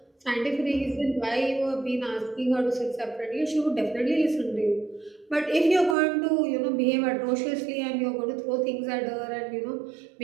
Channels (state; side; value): drops out; left; at 6.0 s